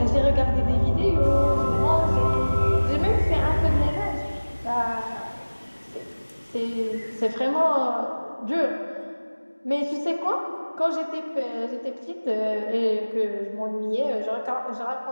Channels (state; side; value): inverted; both; correlation -1.00